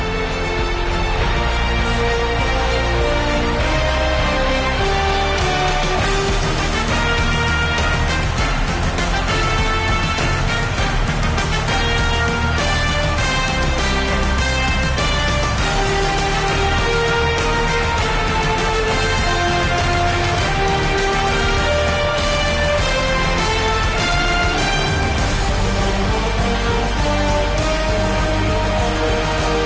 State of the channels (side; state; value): both; identical; correlation 1.00